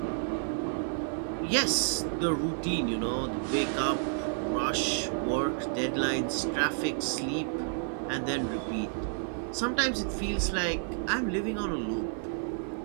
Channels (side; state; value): left; silent; digital silence